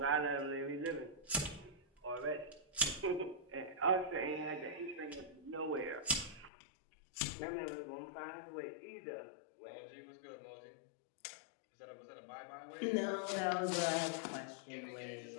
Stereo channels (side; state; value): right; drops out; at 6.5 s